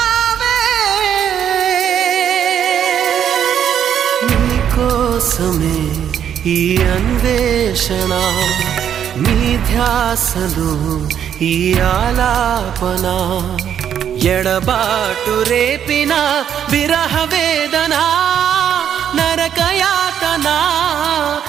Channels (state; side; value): quieter; left; 9.1 dB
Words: కోసమే ఈ అన్వేషణ నీ ధ్యాసలో ఈ ఆలాపన ఎడబాటు రేపిన విరహ వేదన నరకయాతన